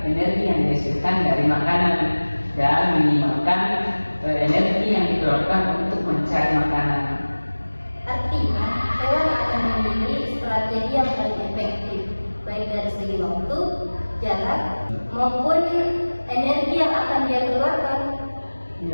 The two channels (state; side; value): inverted; both; correlation -1.00